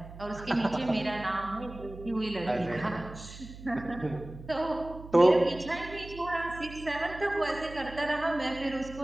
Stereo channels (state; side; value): noise; right; hum, 14 dB below the sound